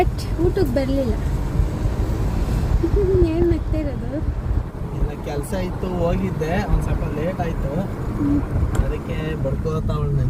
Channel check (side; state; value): both; identical; correlation 1.00